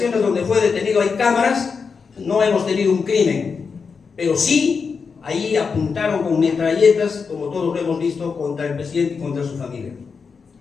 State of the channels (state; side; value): quieter; right; 5.4 dB